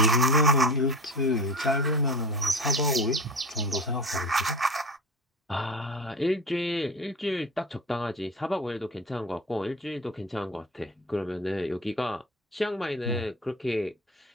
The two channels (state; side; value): normal; both; correlation 0.32